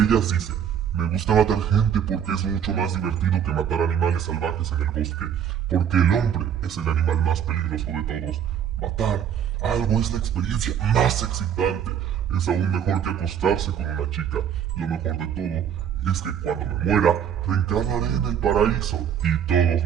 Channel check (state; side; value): quieter; left; 8.7 dB